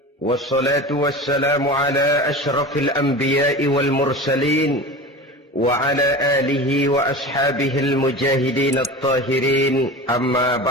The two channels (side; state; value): both; normal; correlation 0.32